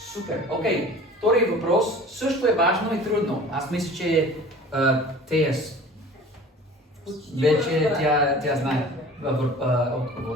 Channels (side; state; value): both; normal; correlation 0.43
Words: Супер. Окей. Втори въпрос също е важно и трудно. Аз мисля, че Теяс вече тя знае